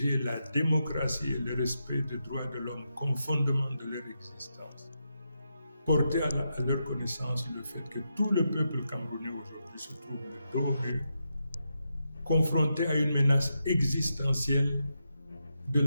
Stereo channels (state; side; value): inverted; both; correlation -0.85